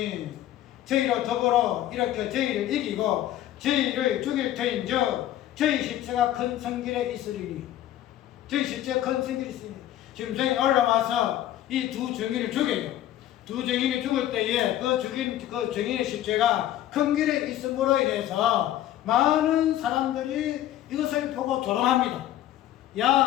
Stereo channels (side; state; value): right; quieter; 12.8 dB